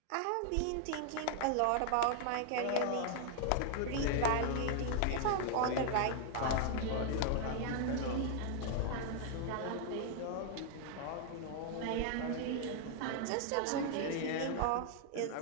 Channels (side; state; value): both; different; correlation 0.00